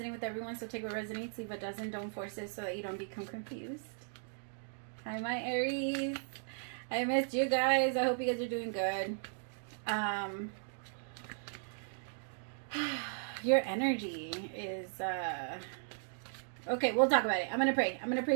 with everyone, so take what resonates. Leave what doesn't. Don't force it so that you don't become confused. Hi, my Aries. I missed you guys. I hope you guys are doing good. Your energy is... Okay, we'll talk about it. I'm going to pray. I'm going to pray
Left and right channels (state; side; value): silent; left; digital silence